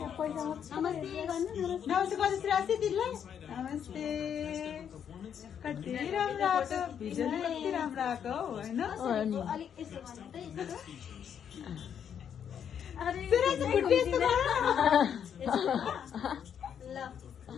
नमस्ते कति राशि दिदीलाई नमस्ते कति राम्रो आएको भिडियोले कति राम्रो आएको होइन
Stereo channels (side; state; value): right; quieter; 8.4 dB